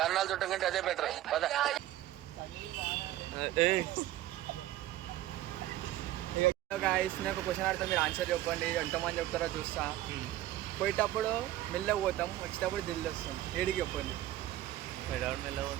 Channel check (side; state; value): left; quieter; 14.4 dB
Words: చుట్టం కంటే అదే బెటర్ ఏ గాయస్ నాకు క్వశ్చన్ అడితే మీరు ఆన్సర్ చెప్పండి ఎంతమంది చెప్తారో చూస్తా పోయేటప్పుడు మెల్లగా పోతాం వచ్చేటప్పుడు దిల్లు వస్తాం ఏడికి చెప్పండి పెడవడం